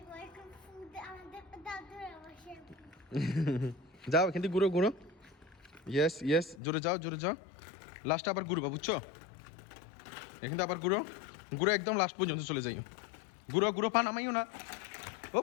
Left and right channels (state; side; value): drops out; right; at 6.6 s